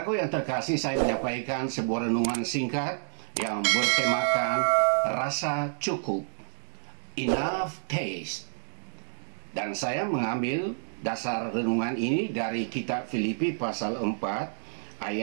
yang terkasih, saya menyampaikan sebuah renungan singkat yang bertemakan rasa cukup, enough taste. Dan saya mengambil dasar renungan ini dari kitab Filipi pasal 4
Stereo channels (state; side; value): silent; left; digital silence